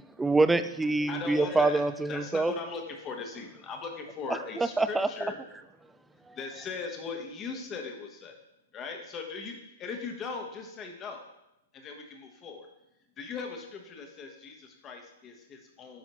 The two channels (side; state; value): both; normal; correlation 0.77